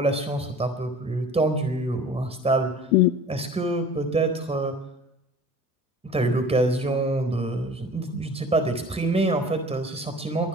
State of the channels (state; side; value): normal; both; correlation 0.44